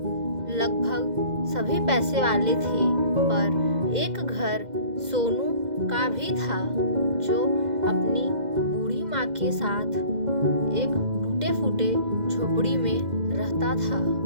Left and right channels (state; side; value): late; left; 2.0 ms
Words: लगभग सभी पैसे वाले थे, पर एक घर सोनू का भी था जो अपनी बूढ़ी माँ के साथ एक टूटे फूटे झोपड़ी में रहता था।